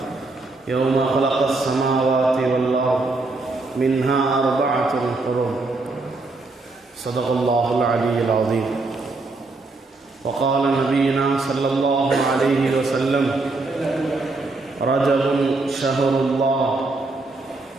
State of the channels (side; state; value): left; quieter; 3.4 dB